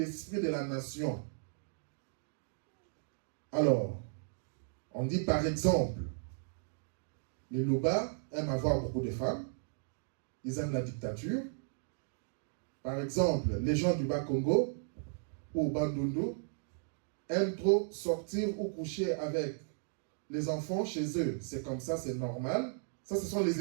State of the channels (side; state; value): left; silent; digital silence